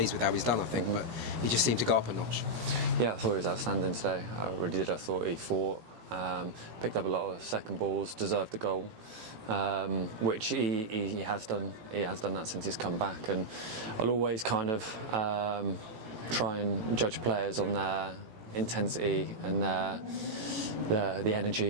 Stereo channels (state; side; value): late; left; 18 ms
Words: with how he's done, I think, but he just seemed to go up a notch. Yeah, I thought he was outstanding today. I really did. I thought he fought, picked up a lot of second balls, deserved the goal, which he has done. He has done that since he's come back, and I'll always kind of try and judge players on their intensity and the